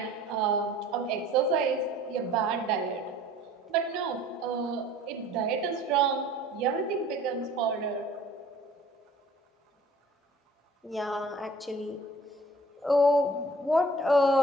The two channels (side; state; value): both; normal; correlation 0.51